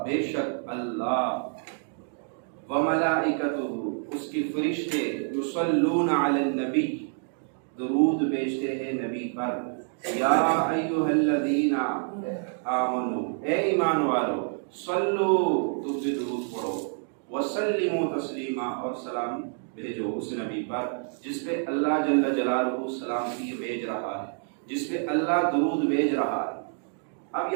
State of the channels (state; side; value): silent; left; 60 dB below the other